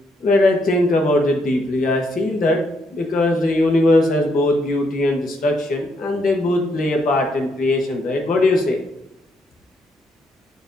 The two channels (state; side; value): normal; both; correlation 0.75